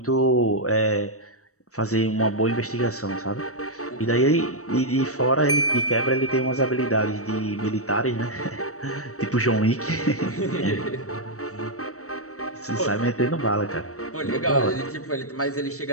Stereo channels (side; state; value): right; late; 0.65 ms